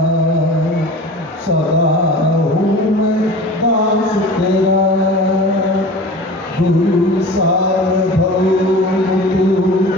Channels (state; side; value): normal; both; correlation 0.38